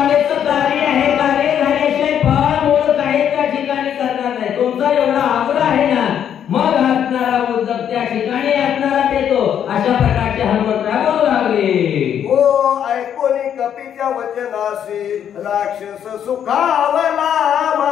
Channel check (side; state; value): right; quieter; 9.2 dB